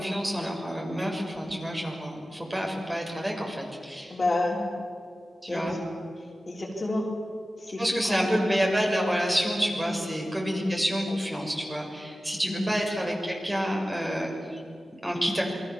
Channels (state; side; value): normal; both; correlation 0.95